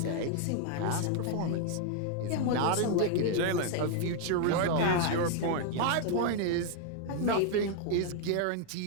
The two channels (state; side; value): different; both; correlation 0.00